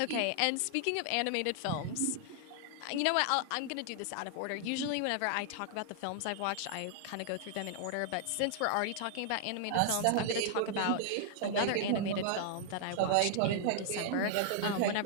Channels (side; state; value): both; different; correlation 0.00